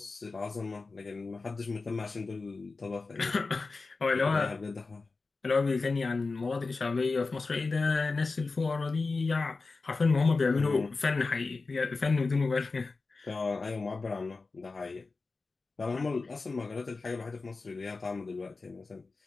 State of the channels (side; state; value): right; quieter; 3.9 dB